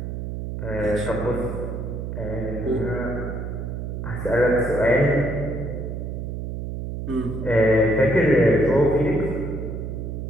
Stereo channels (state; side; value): noise; right; hum, 5 dB below the sound